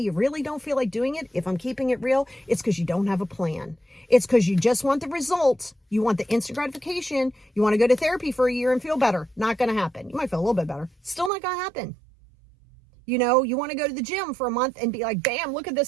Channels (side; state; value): left; drops out; at 11.3 s